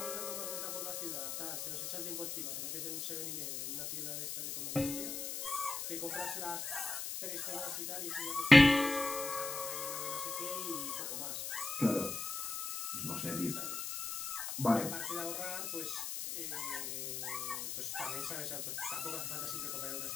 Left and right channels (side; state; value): left; noise; hiss, 4 dB below the sound